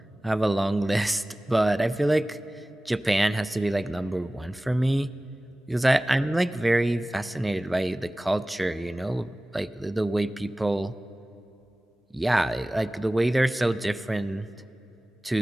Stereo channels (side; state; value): both; normal; correlation 0.98